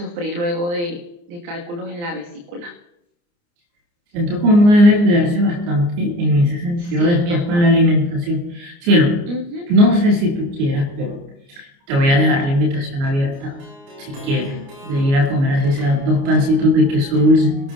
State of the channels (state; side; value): late; left; 29 ms